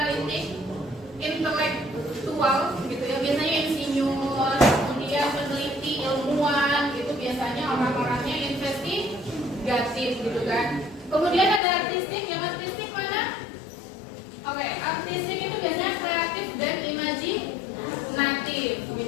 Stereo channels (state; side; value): drops out; right; at 11.6 s